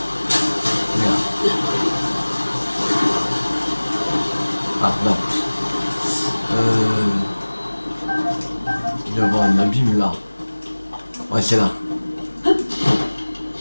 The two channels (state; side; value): inverted; both; correlation -1.00